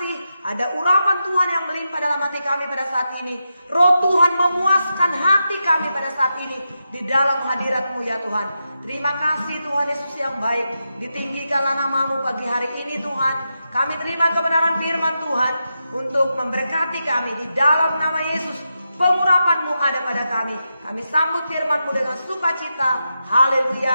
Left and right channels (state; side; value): inverted; both; correlation -0.87